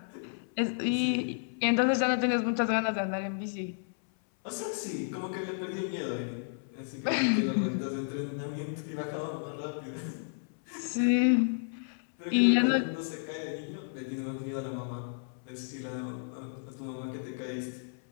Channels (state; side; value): silent; right; 56 dB below the other